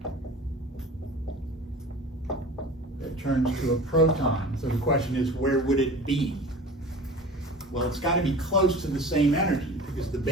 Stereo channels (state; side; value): normal; both; correlation 0.39